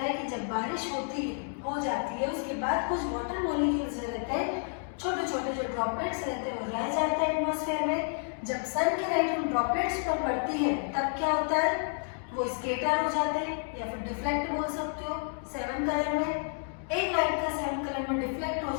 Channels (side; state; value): right; silent; 58 dB below the other